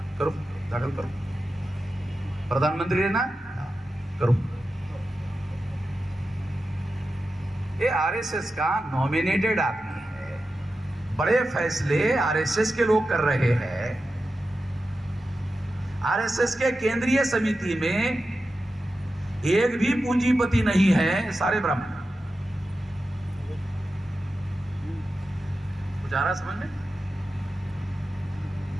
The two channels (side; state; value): both; normal; correlation 0.92